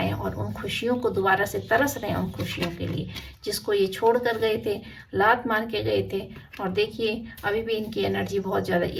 और उन खुशियों को दोबारा से तरस रहे हैं, उन खुशियों के लिए जिसको ये छोड़ कर गए थे, लात मार के गए थे। और देखिए अभी भी इनकी एनर्जी बहुत ज़्यादा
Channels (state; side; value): identical; both; correlation 1.00